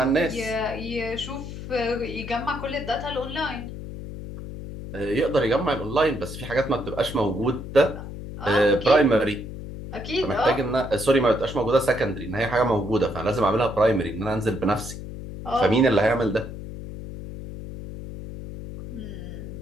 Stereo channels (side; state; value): left; noise; hum, 10 dB below the sound